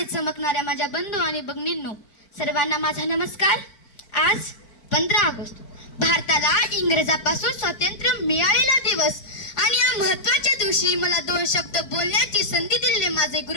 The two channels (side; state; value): right; late; 4.5 ms